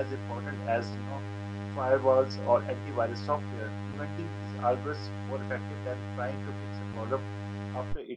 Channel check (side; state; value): both; identical; correlation 1.00